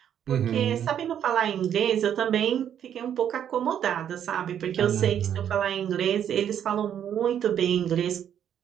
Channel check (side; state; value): left; quieter; 9.4 dB